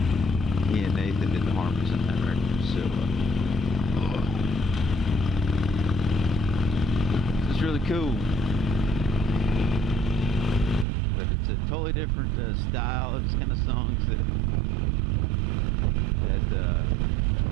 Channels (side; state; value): left; drops out; at 10.9 s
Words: He and Nathan did the harmonies on that record. So it's really cool. But it's a totally different style. It's kind of songs that